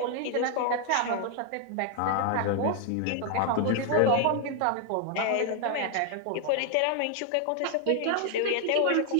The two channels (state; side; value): different; both; correlation 0.00